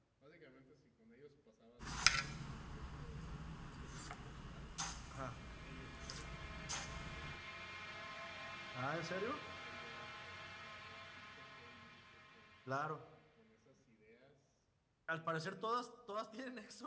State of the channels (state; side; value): identical; both; correlation 1.00